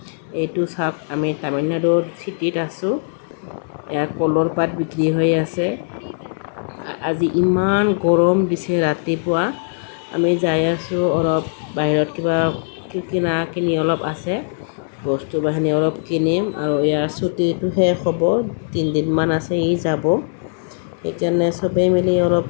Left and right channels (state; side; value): silent; right; digital silence